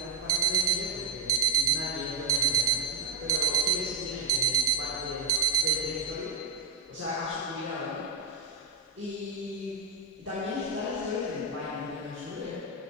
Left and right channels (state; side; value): quieter; left; 3.7 dB